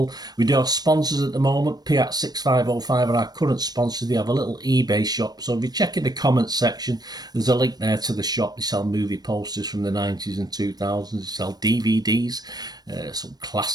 We do have sponsors at the moment. Piat 6505 are our current sponsors. They have a little eBay shop, so if you check in the comments section, there's a link there to the shop. They sell movie posters from the 90s and 2000s. They sell DVDs, some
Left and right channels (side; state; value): left; late; 0.19 ms